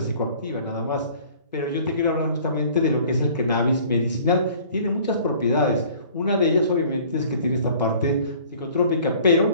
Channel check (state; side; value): inverted; both; correlation -0.51